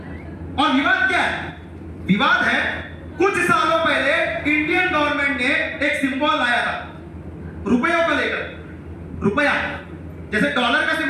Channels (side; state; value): both; identical; correlation 1.00